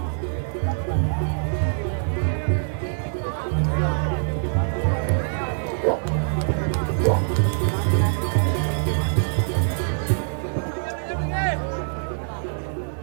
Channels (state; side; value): silent; left; 63 dB below the other